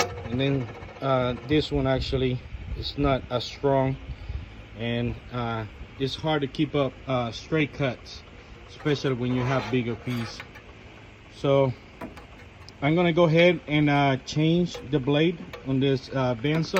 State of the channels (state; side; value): identical; both; correlation 1.00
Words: And then this one actually is not as strong, and it's hard to keep up straight cuts, especially when you have bigger pieces. So I'm gonna go ahead and change the blade on this